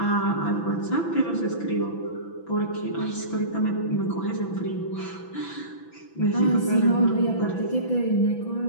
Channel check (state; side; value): late; right; 6.0 ms